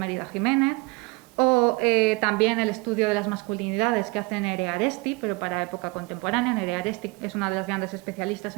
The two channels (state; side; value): quieter; left; 26.0 dB